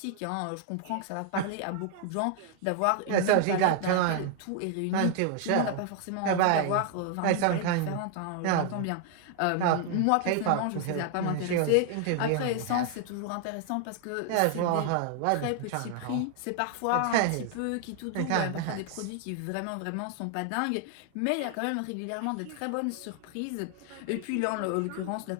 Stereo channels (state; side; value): different; both; correlation 0.00